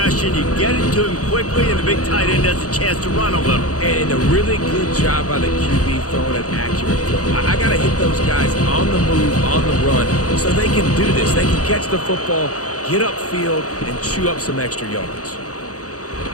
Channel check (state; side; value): late; right; 0.67 ms